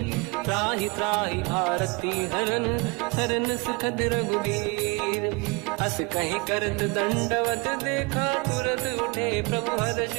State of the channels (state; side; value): quieter; left; 28.2 dB